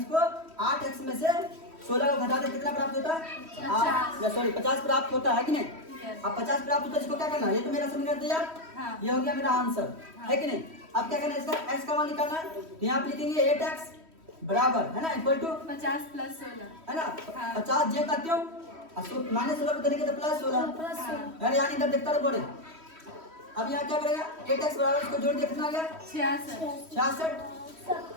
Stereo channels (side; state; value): left; late; 3.1 ms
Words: 8x में से 16 को घटा दे कितना प्राप्त होता है? 50 प्राप्त होता है कि नहीं? अब 50 प्राप्त होता है, इसको क्या करना है? ये तो मेरा समीकरण तैयार, ये हो गया मेरा आंसर, है कि नहीं? अब क्या करना है? इसका x का मान निकालना है, तो यहाँ पे लिखेंगे 8x बराबर है ना, इक्वल टू 50 प्लस 16 है ना? 50 जे करते हो माइनस 16 को देने के तो प्लस 16 यार, यहाँ इधर देखता रहो बड़े। अब यहाँ क्या करेगा? 8x बराबर इसको जोड़ दिया, कितना आ गया? 66।